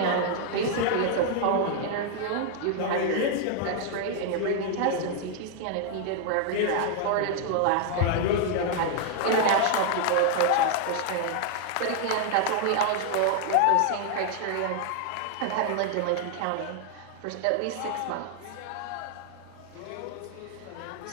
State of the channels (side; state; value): both; different; correlation 0.00